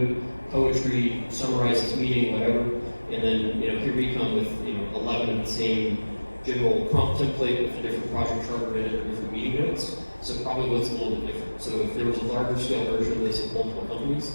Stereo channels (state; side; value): inverted; both; correlation -1.00